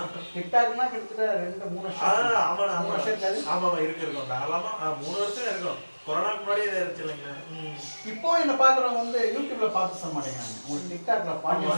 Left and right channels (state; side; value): inverted; both; correlation -1.00